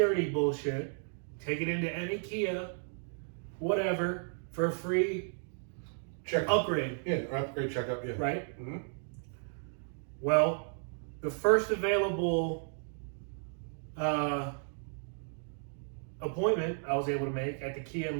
bullshit. Take it into any Kia, whatever, for a free Check. upgrade, Yeah, or upgrade checkup. Yeah. right? Mm-hmm. Well, the first available appointment I was able to make at the Kia in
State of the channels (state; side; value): silent; left; 55 dB below the other